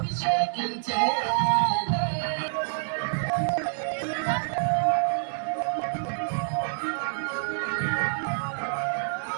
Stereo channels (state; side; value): silent; left; digital silence